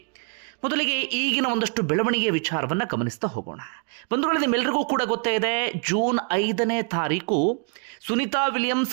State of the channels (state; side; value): quieter; left; 36.1 dB